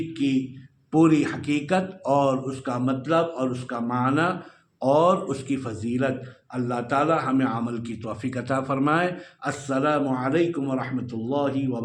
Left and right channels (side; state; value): both; identical; correlation 1.00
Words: کی پوری حقیقت اور اس کا مطلب اور اس کا معنی اور اس کی فضیلت۔ اللہ تعالی ہمیں عمل کی توفیق عطا فرمائے۔ السلام علیکم ورحمۃ اللہ